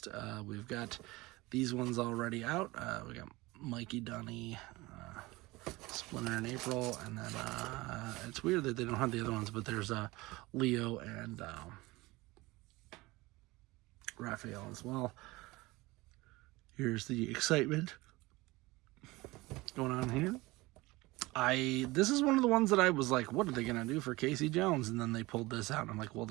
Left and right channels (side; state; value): left; quieter; 21.3 dB